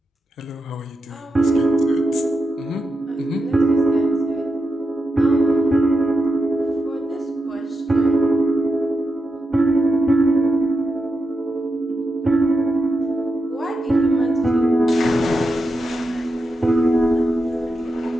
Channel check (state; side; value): normal; both; correlation 0.88